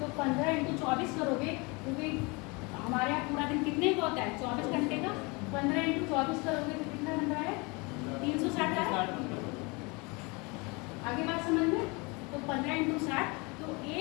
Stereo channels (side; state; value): right; quieter; 28.0 dB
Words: 15 × 24 करोगे, क्योंकि हमारे यहाँ पूरा दिन कितने का होता है? 24 घंटे का। 15 × 24 करोगे तो कितना बन रहा है? 360 है। आगे बात समझ में? तो 15 × 60, तो